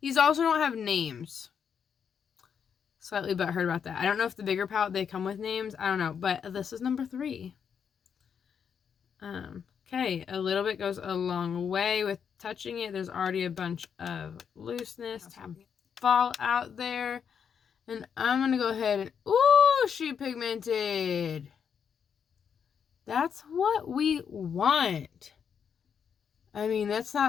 These also don't have names. Slightly butthurt about that. I don't know if the bigger palette, they come with names. I don't know. But this is number 3. Okay. A little bit goes a long way with touching it. There's already a bunch of looseness. Fall out there. And I'm going to go ahead and... Ooh, she pigmented. That's what we want. I mean, that's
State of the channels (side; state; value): right; quieter; 7.3 dB